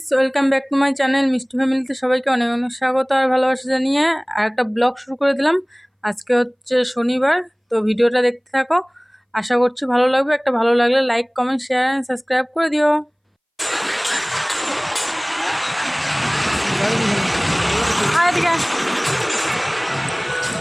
welcome back to my channel মিষ্টি ফ্যামিলিতে সবাইকে অনেক অনেক স্বাগত আর ভালোবাসা জানিয়ে আর একটা ব্লগ শুরু করে দিলাম। আজকে হচ্ছে শনিবার, তো ভিডিওটা দেখতে থাকো, আশা করছি ভালো লাগবে। একটা ভালো লাগলে like comment share and subscribe করে দিও।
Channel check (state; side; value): identical; both; correlation 1.00